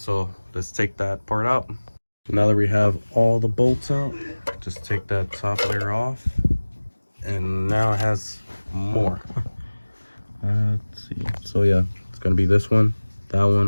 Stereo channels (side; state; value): both; inverted; correlation -1.00